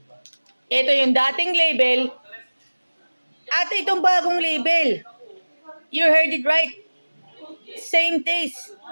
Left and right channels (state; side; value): inverted; both; correlation -1.00